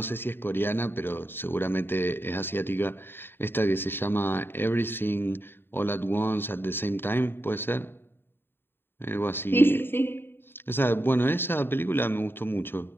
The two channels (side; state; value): right; late; 0.10 ms